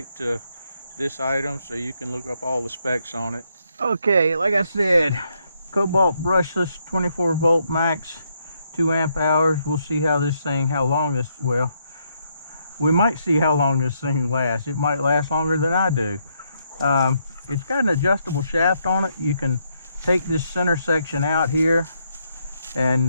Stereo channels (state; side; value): inverted; both; correlation -0.76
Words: to this item so you can look up all the specs on it. Okay, like I said, Kobalt brushless 24 volt max, 2 amp hours. We'll see how long this, well, we might see how long this thing lasts. It might last longer than I do. It's got an adjustable shaft on it. You can take this center section out here and